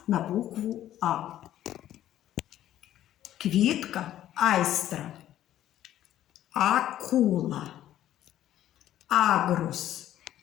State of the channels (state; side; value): quieter; right; 12.5 dB